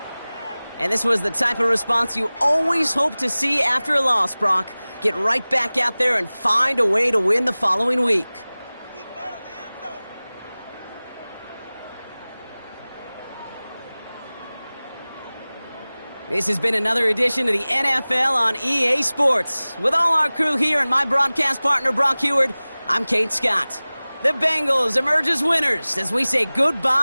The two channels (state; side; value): inverted; both; correlation -0.99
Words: And this was the type of response you always hope to see after a loss, Brock. Get right back out there and find a way to win the following week. This has been another edition of the NFL on EA Sports. With all our crew here and my broadcast partner, Brock Heward, I'm Kate Scott. The Bengals emerge as winners as we say